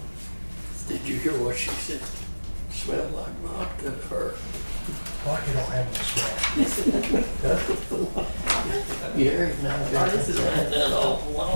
Did you hear what she said? Smelled like vodka to her. Vodka don't have no smell. Yeah, now Oh, this is that right. awful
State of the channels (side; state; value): both; inverted; correlation -1.00